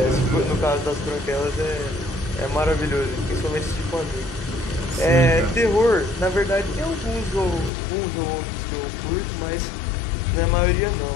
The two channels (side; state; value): right; drops out; at 7.7 s